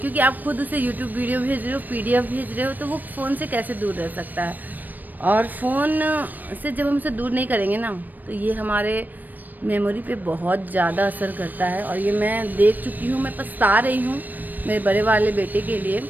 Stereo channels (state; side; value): late; left; 0.087 ms